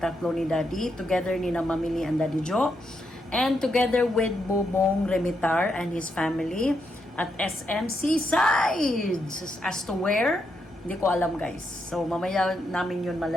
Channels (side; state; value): both; normal; correlation 0.81